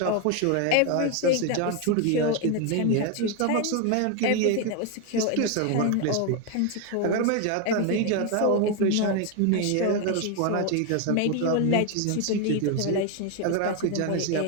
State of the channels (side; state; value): both; different; correlation 0.01